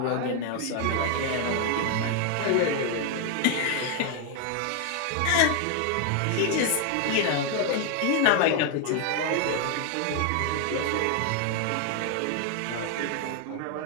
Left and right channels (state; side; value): different; both; correlation 0.00